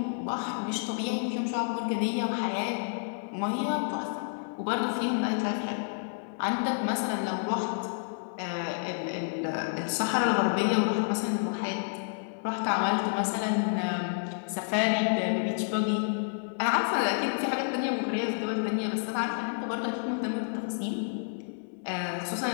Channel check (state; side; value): silent; right; digital silence